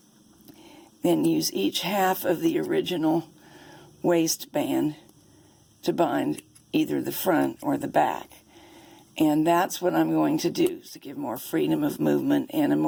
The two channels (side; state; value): both; identical; correlation 1.00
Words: then use each half of the original waistband to bind either the front or the back. And that's what I'm going to do, to give more freedom of movement and a